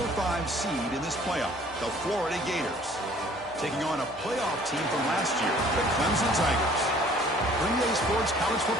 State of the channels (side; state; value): both; normal; correlation 0.55